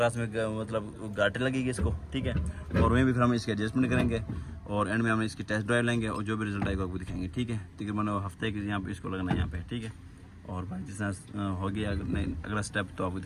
में मतलब गाटे लगेगी इसको, ठीक है। और वहीं भी फिर हम इसकी एडजस्टमेंट करेंगे और एंड में हम इसकी टेस्ट ड्राइव लेंगे और जो भी रिजल्ट आएगा वो दिखाएंगे, ठीक है। तकरीबन हफ्ते के यहाँ पे इसको लगना है यहाँ पे, ठीक है। और भाई जिस तरह होगी अगला स्टेप तो आपको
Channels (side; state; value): both; identical; correlation 1.00